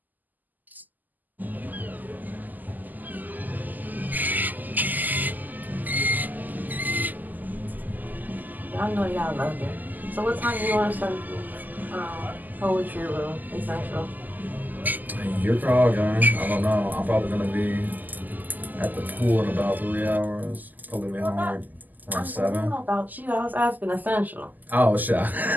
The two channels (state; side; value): late; left; 0.084 ms